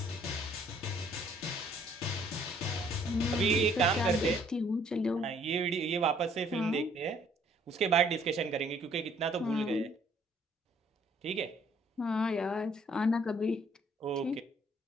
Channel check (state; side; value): normal; both; correlation 0.62